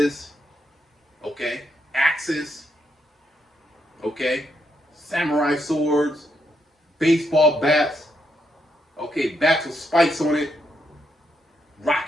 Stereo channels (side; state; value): both; normal; correlation 0.79